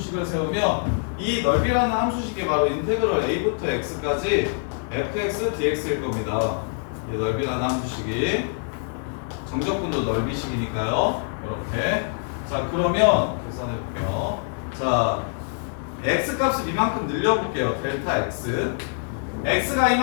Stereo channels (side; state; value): right; silent; 58 dB below the other